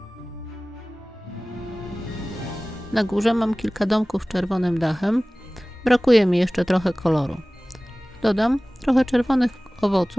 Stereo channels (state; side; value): normal; both; correlation 0.98